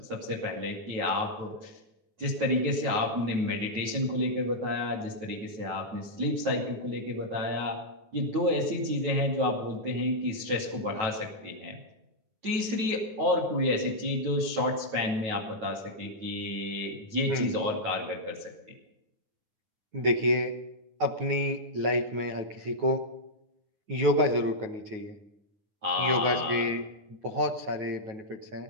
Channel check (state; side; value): late; left; 9.2 ms